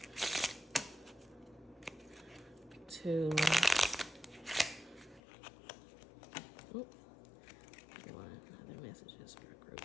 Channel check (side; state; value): right; drops out; at 5.2 s